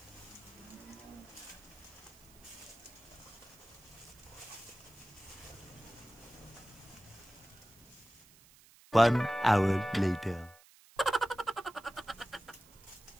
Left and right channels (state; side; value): noise; right; hiss, 24 dB below the sound